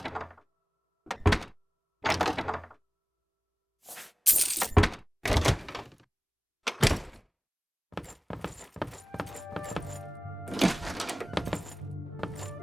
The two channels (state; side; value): normal; both; correlation 0.98